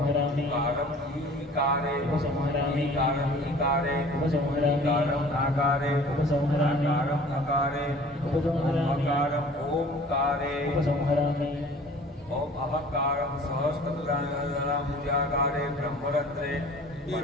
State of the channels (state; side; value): normal; both; correlation 0.48